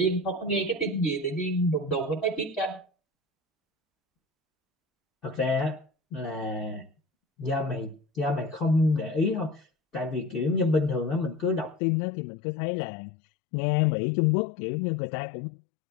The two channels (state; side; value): drops out; right; at 11.8 s